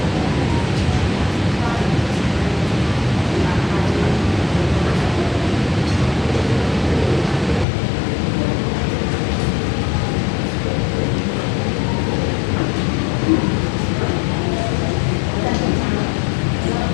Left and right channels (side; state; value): right; drops out; at 7.7 s